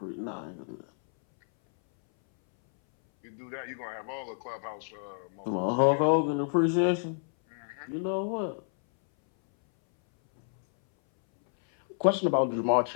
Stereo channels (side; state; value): right; silent; 58 dB below the other